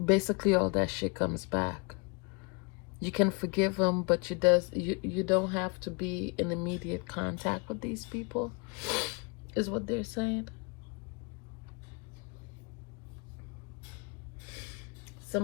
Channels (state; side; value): quieter; right; 32.2 dB